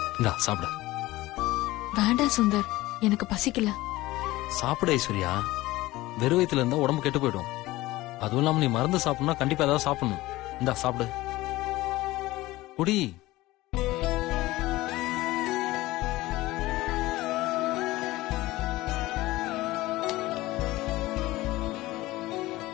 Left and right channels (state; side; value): quieter; right; 18.4 dB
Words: இந்தா சாப்பிடு. வேண்டாம் சுந்தர், எனக்கு பசிக்கல. சாப்பிடு ஐஸ்வர்யா, வெறும் வயித்துல இருந்தா உடம்பு கெட்டு போயிடும். அதுவும் இல்லாம நீ மருந்து சாப்பிடணும்னா கண்டிப்பா ஏதாவது சாப்பிடணும். இந்தா சாப்பிடு, குடி.